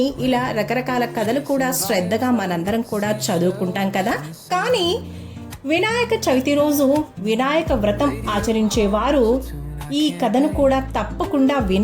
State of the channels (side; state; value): both; identical; correlation 1.00